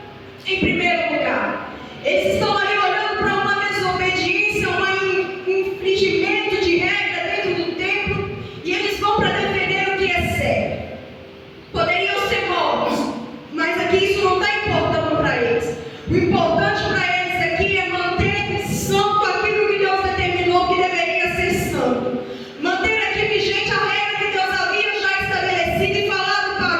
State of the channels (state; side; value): identical; both; correlation 1.00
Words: em primeiro lugar. Eles estão ali olhando para uma desobediência desobediência, um infringimento de regra dentro do templo, e eles vão para defender o que é certo. Poderiam ser mortos, mas aqui isso não está importando para eles. O importante para eles aqui é manter santo aquilo que Deus determinou que deveria ser santo. Manter aqui vigente a regra que Deus havia já estabelecido e falado